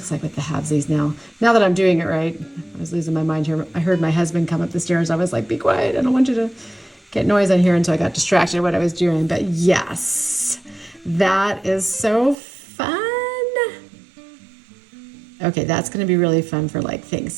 like with the halvesies now. Now that I'm doing it right. I was losing my mind here. I heard my husband come up the stairs. I was like, be quiet. I don't want you to get noise on here. And so I got distracted with what I was doing. But yes, that is so fun. Okay, that's going to be really fun for like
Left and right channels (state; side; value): drops out; left; at 12.4 s